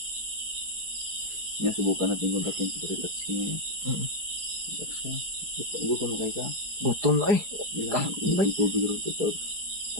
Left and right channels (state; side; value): late; left; 4.8 ms